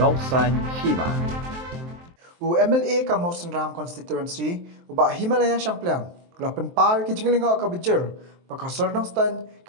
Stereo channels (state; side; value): late; left; 23 ms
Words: Nongsan Hima. U MLA ka Mawsynram constituency uba Himalaya Shampliang. Lapan par ki jinglinga ka Bijur. Pakasar Nongstan